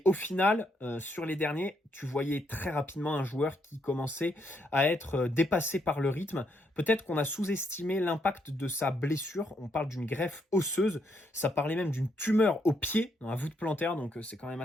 au final, sur les derniers, tu voyais très rapidement un joueur qui commençait à être dépassé par le rythme. Peut-être qu'on a sous-estimé l'impact de sa blessure. On parle d'une greffe osseuse. Ça parlait même d'une tumeur au pied, dans la voûte plantaire, donc c'est quand même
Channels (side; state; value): both; normal; correlation 0.75